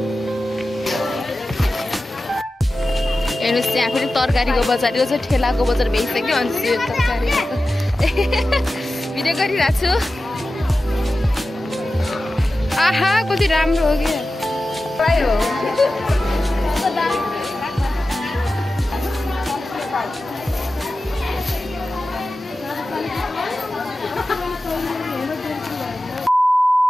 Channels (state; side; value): normal; both; correlation 0.94